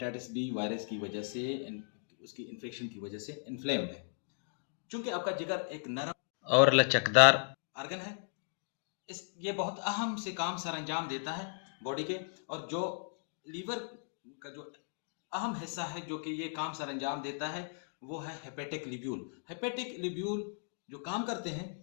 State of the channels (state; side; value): silent; right; digital silence